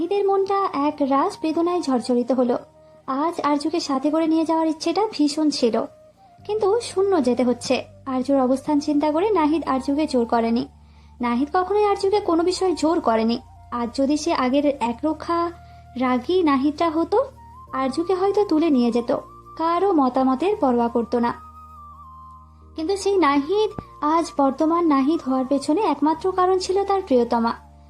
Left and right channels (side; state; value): both; identical; correlation 1.00